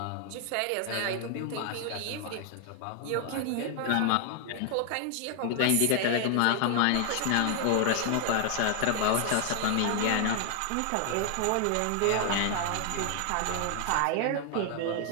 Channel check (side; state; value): both; different; correlation 0.00